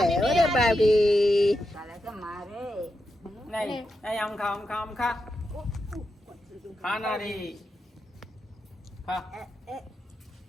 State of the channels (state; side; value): normal; both; correlation 0.87